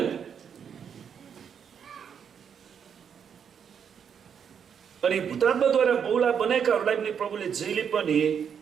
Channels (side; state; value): left; quieter; 7.6 dB